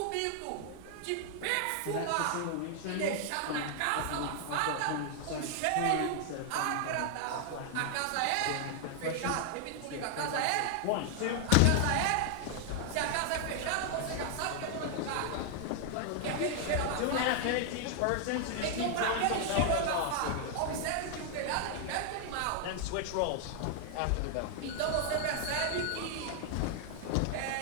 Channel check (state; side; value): different; both; correlation 0.00